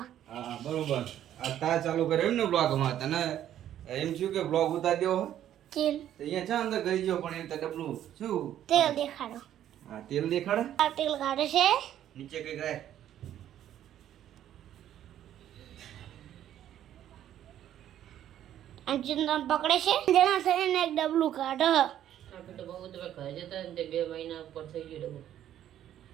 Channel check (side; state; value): left; quieter; 11.3 dB